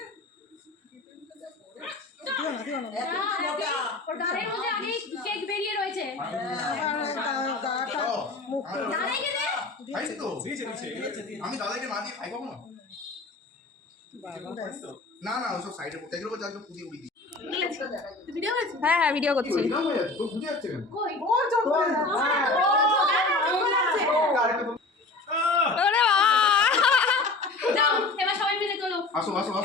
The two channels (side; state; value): right; quieter; 3.3 dB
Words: ওর গালের মধ্যে আগে কেক বেরিয়ে রয়েছে ও, আমার দাদাইকে দে খাইছি তো। দিয়েছে, দিয়েছে। আমি দাদাকে না দিয়ে খাই কখনো? না না ওসব সাইডে পড়তে এগুলো যাকে পুদি উড়ি দিই। তুই ভিডিও করেছিস হ্যাঁ হ্যাঁ ভিডিও করছি। এরকম হয়ে যাচ্ছে, তোর বুঝে যাচ্ছে কেন? কই ওর জন্য ওরে বাবা যাও এবার সবাই মিলে চলো আসো আসো